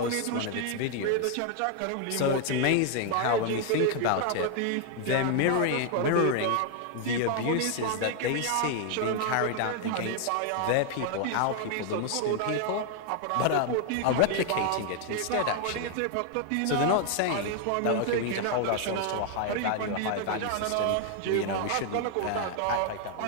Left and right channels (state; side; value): different; both; correlation 0.00